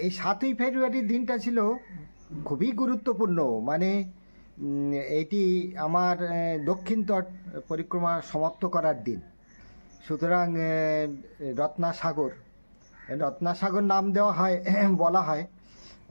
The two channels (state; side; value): inverted; both; correlation -1.00